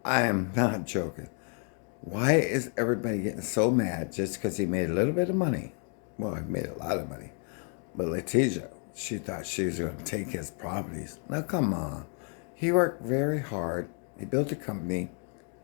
I am not joking. Why is everybody getting so mad just because he made a little bit of money? Well, he made a lot of money. But Letitia, she thought she was going to take his properties. Now, come on. He worked very hard. He built a company.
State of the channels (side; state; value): right; quieter; 39.6 dB